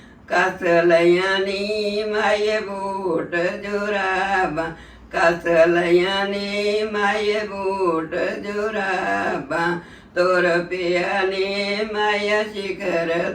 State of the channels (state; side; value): identical; both; correlation 1.00